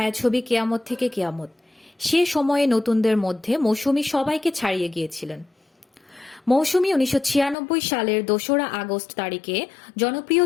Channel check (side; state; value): right; drops out; at 7.6 s